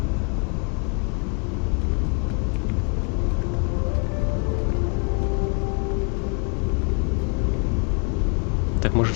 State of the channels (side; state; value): right; quieter; 38.1 dB